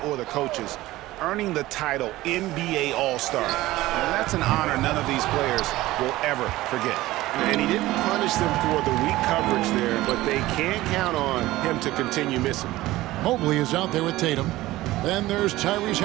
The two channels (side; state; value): left; quieter; 17.3 dB